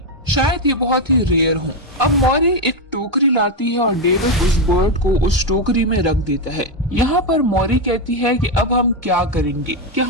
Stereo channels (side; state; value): both; normal; correlation 0.06